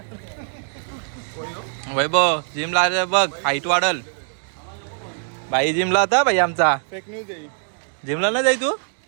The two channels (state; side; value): silent; left; digital silence